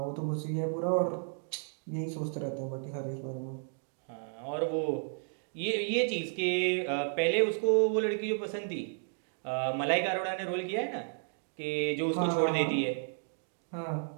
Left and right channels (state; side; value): silent; left; 56 dB below the other